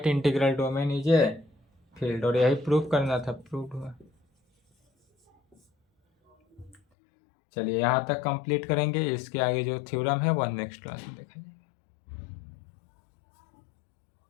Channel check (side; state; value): right; drops out; at 6.8 s